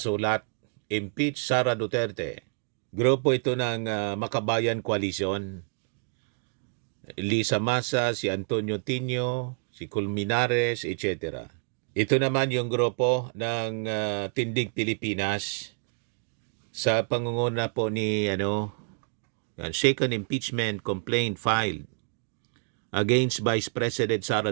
Impeach Sara Duterte. Grupo ito ng Makabayan Coalition. Lisa Masa, si Antonio Tinio, si Colmenares, etc. Ito naman yung grupo ng Tindig Pilipinas. Sa pangunguna po ni second impeachment complaint filed against Vice President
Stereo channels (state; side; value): silent; left; 59 dB below the other